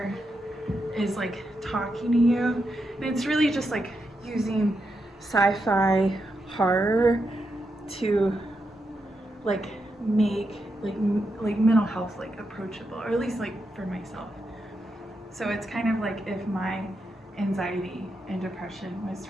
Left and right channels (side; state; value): both; normal; correlation 0.84